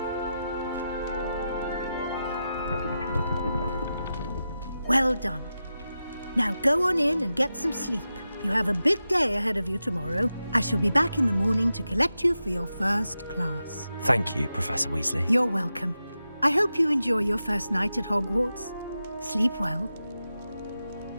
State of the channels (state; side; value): inverted; both; correlation -0.91